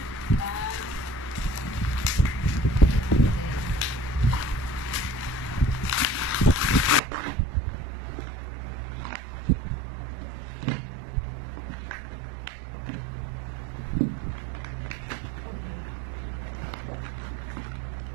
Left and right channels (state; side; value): drops out; left; at 7.0 s